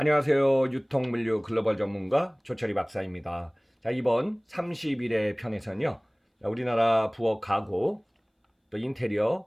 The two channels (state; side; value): identical; both; correlation 1.00